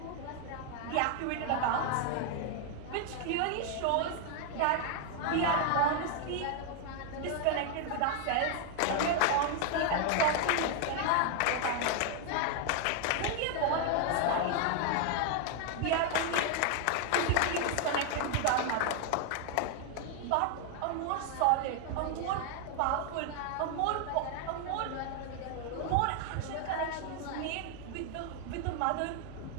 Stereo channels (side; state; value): both; different; correlation 0.00